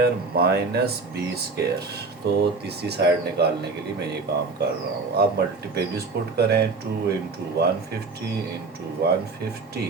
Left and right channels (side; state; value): left; quieter; 4.0 dB